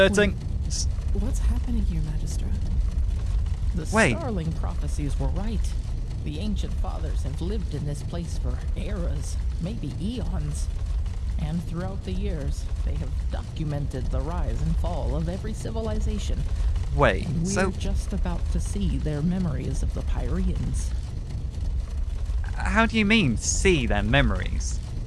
What's happening here, Magistra? The Wait. starling prophecies were right. The ancient fathers have lived in this place for eras, maybe eons. And throughout the years, they have documented the rise and fall of every civilization. Wait, We're so just about to see their memories of the Pyreans. how do you mean, see their memories?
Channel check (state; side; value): identical; both; correlation 1.00